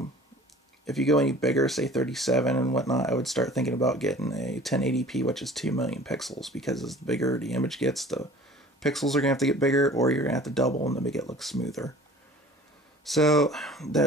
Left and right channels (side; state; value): both; normal; correlation 0.46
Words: If you go any bigger, say 37 and whatnot, I would start thinking about getting a 1080p, which is 2,000,000 pixels, because as bigger the image gets, the pixels are going to have to get bigger, or you're going to have to double them to make it look smoother. So